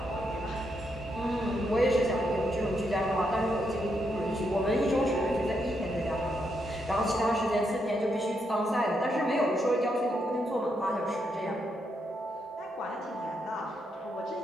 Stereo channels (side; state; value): both; normal; correlation 0.80